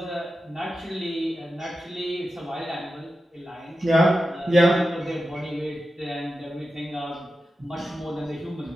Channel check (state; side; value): normal; both; correlation 0.91